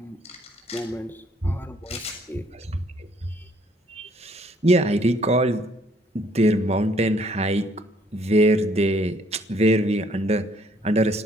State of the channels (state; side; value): normal; both; correlation 0.64